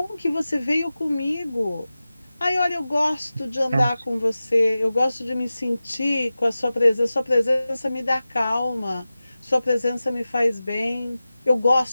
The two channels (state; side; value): inverted; both; correlation -0.95